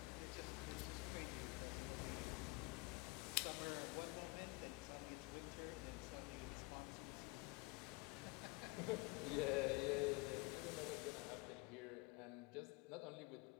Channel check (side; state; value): right; quieter; 25.5 dB